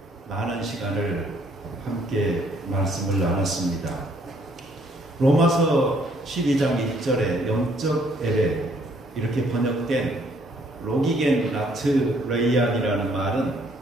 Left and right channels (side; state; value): both; normal; correlation 0.65